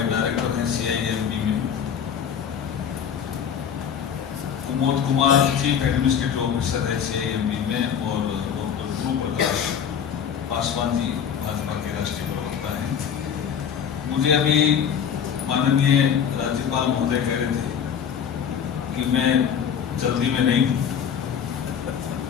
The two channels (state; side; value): quieter; right; 8.0 dB